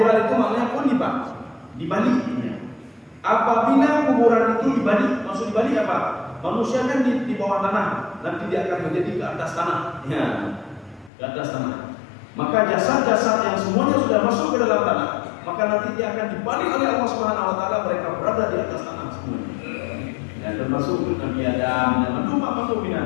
itu maknanya kulibat, dibalik. Apabila kuburan itu dibalik, maksud dibalik apa? Manusia kan di bawah tanah, nanti dia akan menjadi ke atas tanah. Ya, ke atas tanah. Maka jasad-jasad yang semuanya sudah masuk ke dalam tanah, maka nanti dia akan dibalik oleh Allah Subhanahu wa taala, mereka berada di atas tanah semuanya. Ya, termasuk Nabi Adam dan mantu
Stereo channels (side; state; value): right; drops out; at 11.1 s